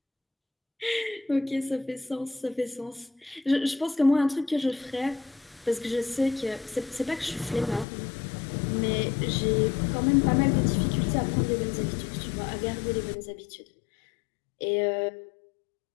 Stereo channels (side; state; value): right; drops out; at 7.9 s